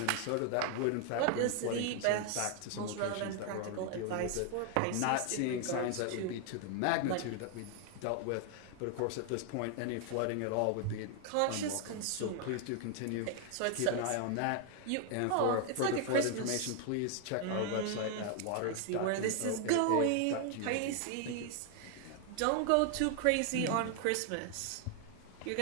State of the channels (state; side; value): different; both; correlation 0.00